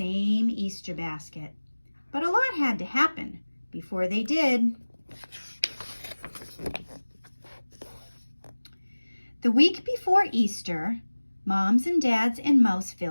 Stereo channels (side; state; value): both; inverted; correlation -1.00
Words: Easter basket, but a lot had to happen before they did. The week before Easter, Moms and Dads in